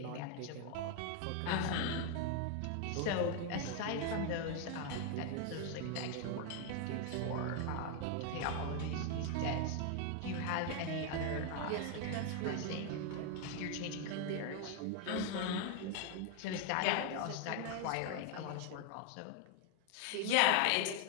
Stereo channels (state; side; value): different; both; correlation 0.01